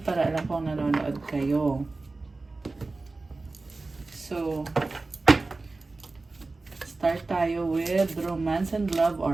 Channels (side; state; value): left; quieter; 3.5 dB